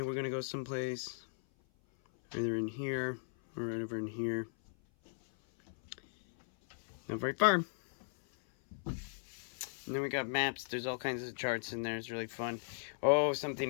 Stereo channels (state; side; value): silent; right; 53 dB below the other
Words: we're gonna go someplace either in here or right over in here. Not very far. And then we got maps. There's all kinds of charts in there. It's really fun. Oh,